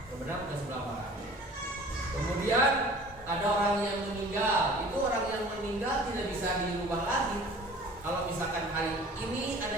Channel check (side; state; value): both; normal; correlation 0.46